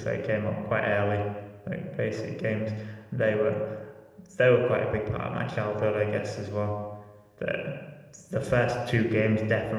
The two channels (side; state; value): both; identical; correlation 1.00